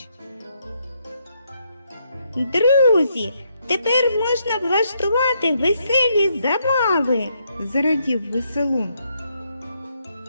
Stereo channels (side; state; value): both; inverted; correlation -0.76